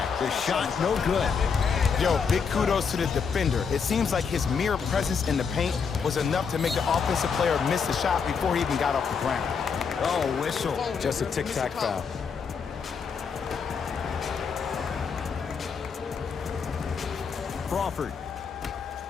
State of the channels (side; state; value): right; quieter; 6.0 dB